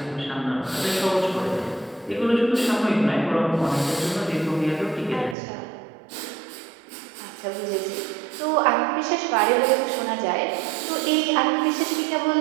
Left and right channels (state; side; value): drops out; left; at 5.4 s